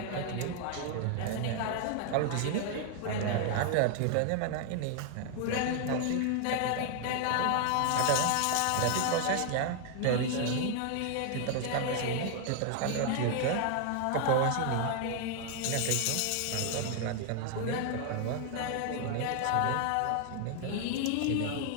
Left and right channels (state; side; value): different; both; correlation 0.00